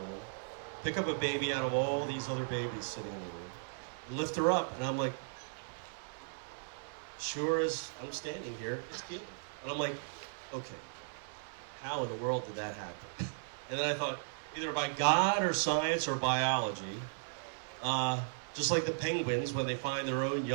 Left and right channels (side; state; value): left; silent; digital silence